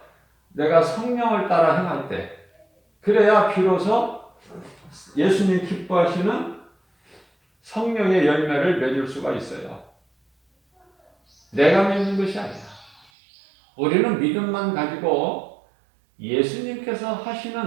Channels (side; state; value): left; drops out; at 13.1 s